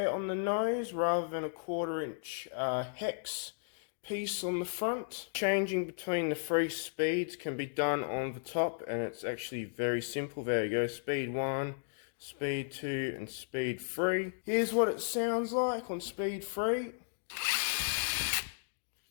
on the nose rather than a 1/4 inch hex piece on the front. Changing between the 3 speeds can be done on the top, and it's actually very simple. There you go, speed 1, speed 2, and speed 3. Here's what it sounds like on speed 3.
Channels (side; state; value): right; silent; digital silence